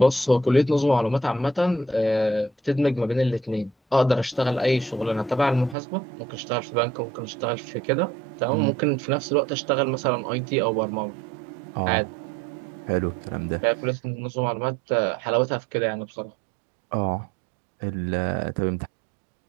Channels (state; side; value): drops out; left; at 5.8 s